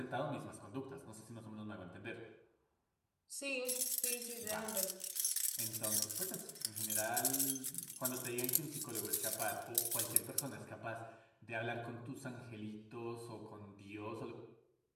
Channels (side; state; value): both; identical; correlation 1.00